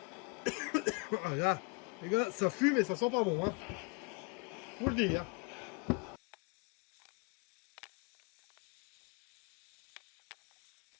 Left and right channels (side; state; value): right; quieter; 30.2 dB